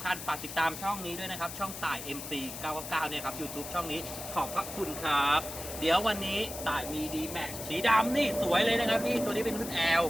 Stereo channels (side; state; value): left; noise; hiss, 9 dB below the sound